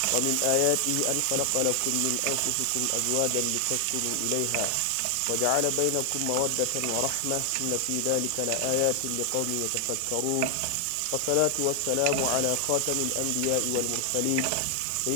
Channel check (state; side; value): different; both; correlation 0.00